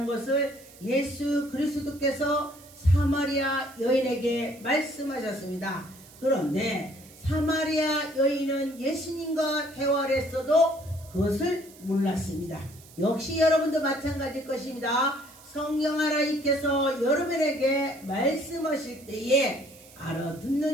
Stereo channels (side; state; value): right; noise; hiss, 22 dB below the sound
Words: 것을 예수 그리스도께서 사마리아 여인에게 말씀하셨습니다. 그런데 사마리아 여인은 예수님과 대화를 했어도 그것을 몰랐습니다. 역시 여러분도 마찬가지일 것입니다. 성령 하나님께서 여러분에게 말씀하실 때에